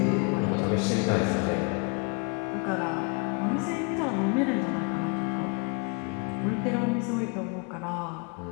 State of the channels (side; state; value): right; quieter; 33.4 dB